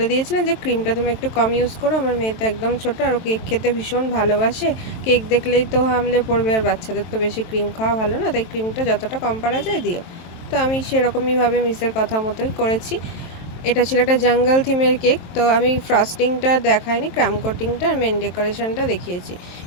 দিয়েছিলেন যে ক্রিমটা তুমি একটু কম ইউজ করো, আমার মেয়ে তো একদম ছোটো আর ও কেক খেতে ভীষণ ভালোবাসে, কেক দেখলেই তো হামলে পড়বে, আর বাচ্চাদের তো বেশি ক্রিম খাওয়া ভালো না, তাই ক্রিমটা যতটা কম পারা যায় দিও। তো আমি সেরকমইভাবে মিসের কথা মতোই করেছি। এটা ছিল একটা জঙ্গল থিমের কেক। তো আমি ফ্রস্টিংটা দেখাইনি, ক্রাম কোটিংটা আর মেন ডেকোরেশনটা দেখিয়েছি।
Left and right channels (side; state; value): right; late; 23 ms